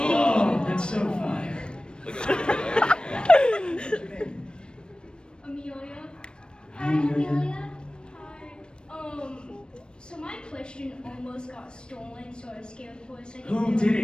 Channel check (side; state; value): right; late; 0.053 ms